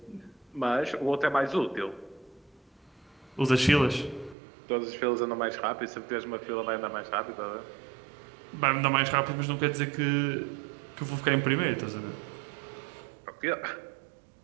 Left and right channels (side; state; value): left; drops out; at 4.4 s